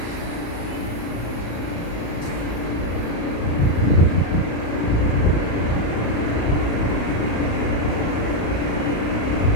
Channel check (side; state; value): right; late; 35 ms